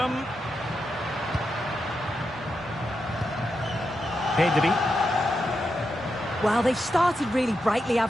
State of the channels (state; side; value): normal; both; correlation 0.86